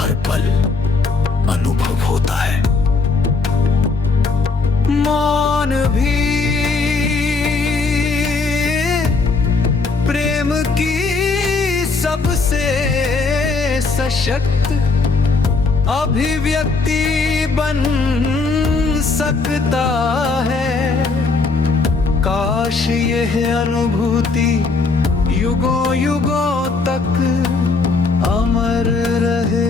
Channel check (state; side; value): quieter; right; 4.1 dB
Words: पल अनुभव होता है। मौन भी प्रेम की सबसे सशक्त अभिव्यक्ति बन सकता है। काश यह अनुभूति युगों युगों तक अमर